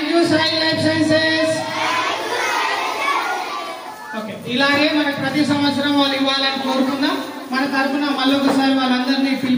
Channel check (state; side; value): identical; both; correlation 1.00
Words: you Sai life sciences. Okay, ఇలాగే మనకు ప్రతి సంవత్సరం వాళ్ళు ఇవ్వాలని కోరుకుందాం. మన తరఫున మళ్ళీ ఒకసారి వాళ్ళందరినీ